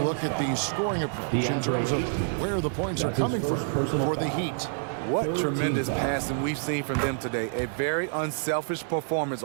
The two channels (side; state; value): left; silent; 60 dB below the other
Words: look at the scoring approach in terms of where the points are coming from for the Heat. What tremendous passing we've seen from them today. A very unselfish performance